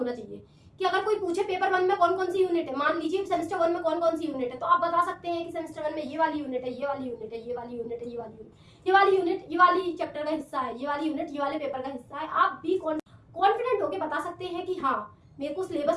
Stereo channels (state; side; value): identical; both; correlation 1.00